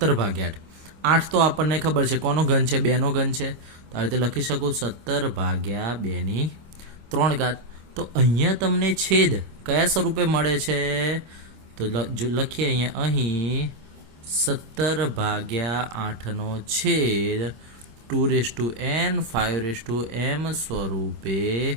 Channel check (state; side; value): late; left; 25 ms